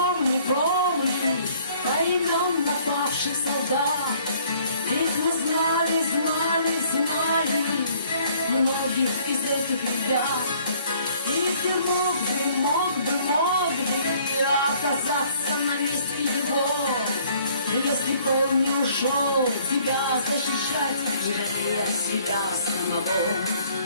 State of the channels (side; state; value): both; inverted; correlation -0.59